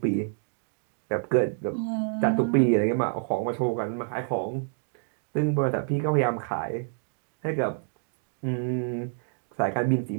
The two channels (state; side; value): silent; left; digital silence